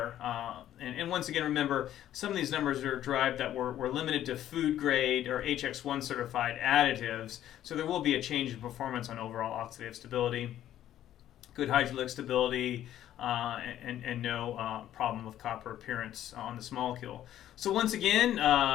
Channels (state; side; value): quieter; right; 12.0 dB